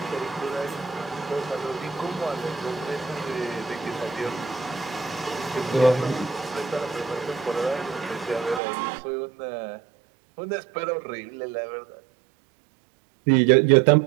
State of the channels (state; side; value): drops out; left; at 8.6 s